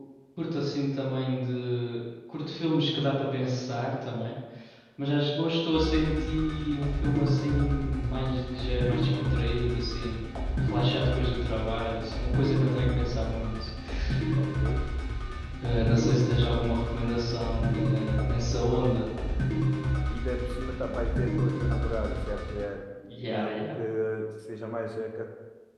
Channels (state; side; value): identical; both; correlation 1.00